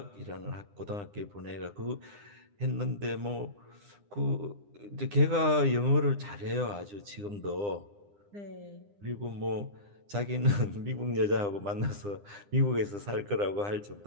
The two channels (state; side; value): late; left; 9.9 ms